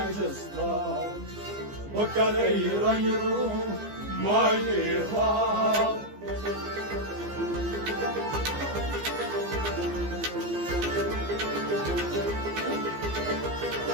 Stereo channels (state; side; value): late; left; 15 ms